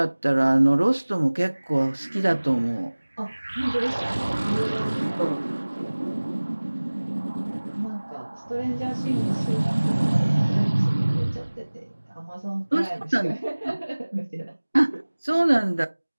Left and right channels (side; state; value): both; inverted; correlation -1.00